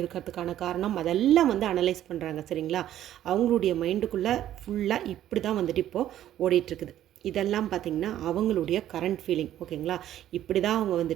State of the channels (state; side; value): quieter; left; 12.1 dB